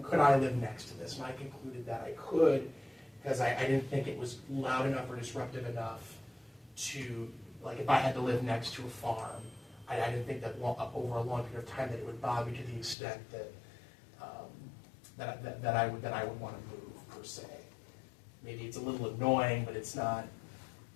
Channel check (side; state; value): right; drops out; at 13.0 s